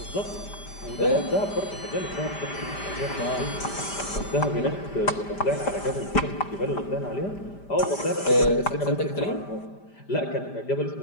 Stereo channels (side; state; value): right; late; 5.1 ms